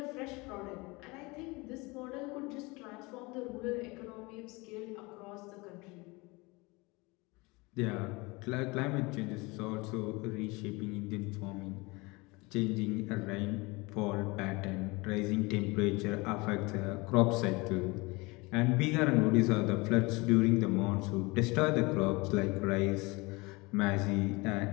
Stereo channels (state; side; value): quieter; right; 25.0 dB